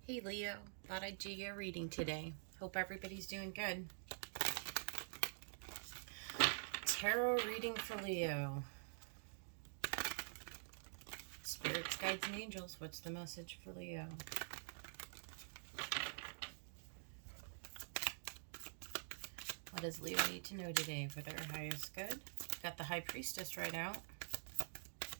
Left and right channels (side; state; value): left; silent; digital silence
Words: Hey Leo, thought I'd do your reading today. Hope everybody's doing good. Tarot reading for Leo. Spirits, guides, and angels, what's the message for Leo? What does Leo need to know today for their highest good? Got the High Priestess right out.